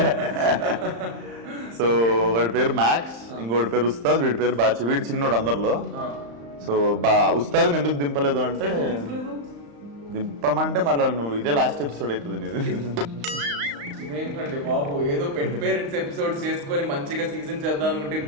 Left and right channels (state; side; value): late; left; 35 ms